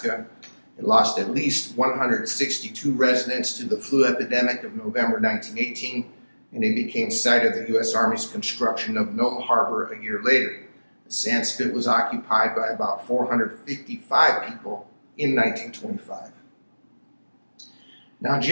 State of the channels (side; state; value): both; inverted; correlation -1.00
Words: It lost at least 162 residents to the flu epidemic of November 1918, and it became site of the U.S. Army's construction of Nome Harbor a year later. The sand spit was occupied by about 455 people in 1925. Now, on